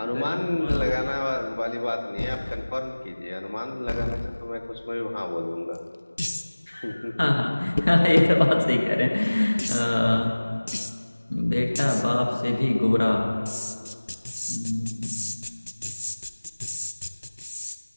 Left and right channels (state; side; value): inverted; both; correlation -1.00